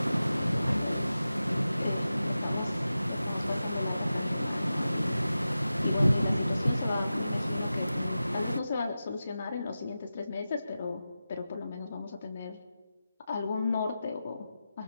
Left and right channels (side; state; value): both; inverted; correlation -0.93